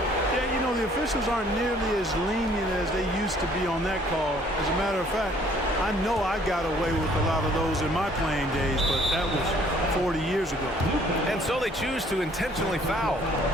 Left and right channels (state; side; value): normal; both; correlation 0.60